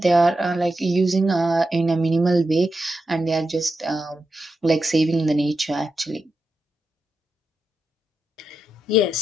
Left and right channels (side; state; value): both; normal; correlation 0.87